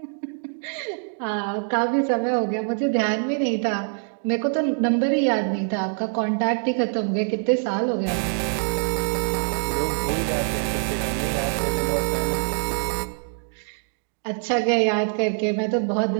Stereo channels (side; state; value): left; silent; digital silence